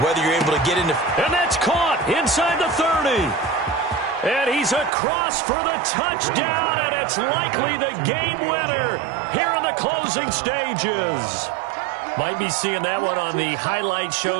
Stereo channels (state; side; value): drops out; left; at 4.9 s